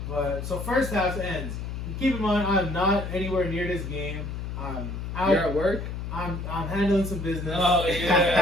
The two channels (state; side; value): noise; left; hum, 6 dB below the sound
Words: But so first half ends. Keep in mind, I'm not anywhere near this game. I'm out. You're at work? I'm handling some business. Oh